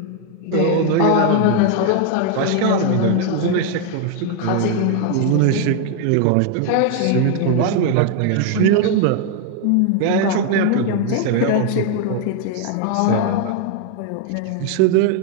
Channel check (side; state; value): both; different; correlation 0.00